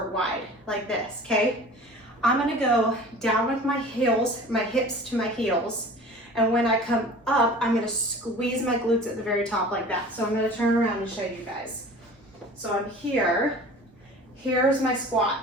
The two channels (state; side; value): normal; both; correlation 0.42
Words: wide like this, okay? I'm gonna go down with my heels, my hips to my heels, and when I come up, I'm gonna squeeze my glutes at the very top like that. So I'm gonna turn around and show you guys. So I'm here, here's my